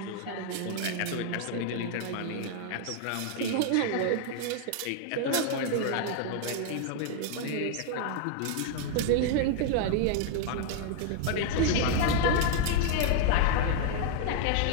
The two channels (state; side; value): different; both; correlation 0.00